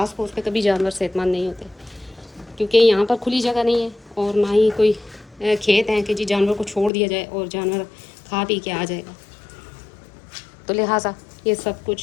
फूस पे कभी जानवर सेहतमंद नहीं होते, क्योंकि यहाँ पर खुली जगह नहीं है और ना ही कोई खेत हैं कि जी जानवर को छोड़ दिया जाए और जानवर खा पी के आ जाएगा। तो लिहाजा ये सब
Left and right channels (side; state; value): right; drops out; at 6.9 s